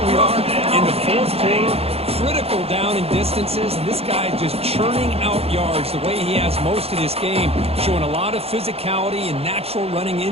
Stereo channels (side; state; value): left; late; 0.29 ms